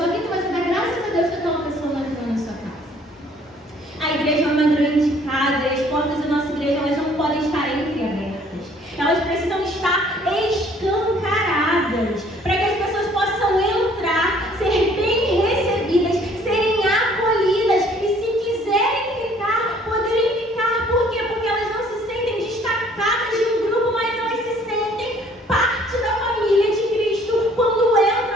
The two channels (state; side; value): normal; both; correlation 0.58